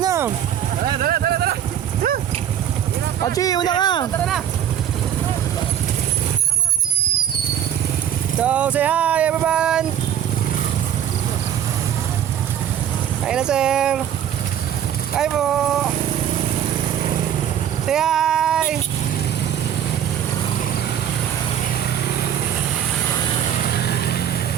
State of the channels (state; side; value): quieter; left; 9.8 dB